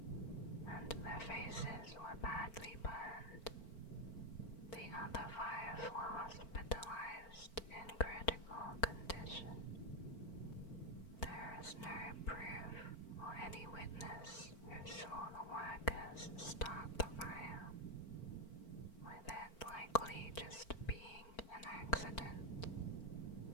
and their faces were badly burned. The other 5 were hospitalized in critical condition. There is no proof or any witness who saw the workers start the fire, with it likely just being an accident.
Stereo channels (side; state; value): right; late; 4.4 ms